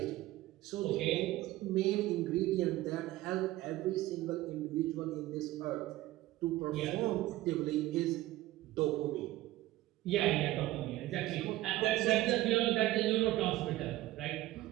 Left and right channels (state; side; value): quieter; left; 16.5 dB